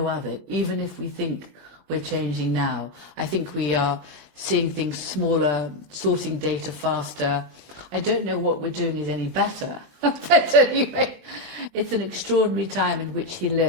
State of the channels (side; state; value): left; late; 22 ms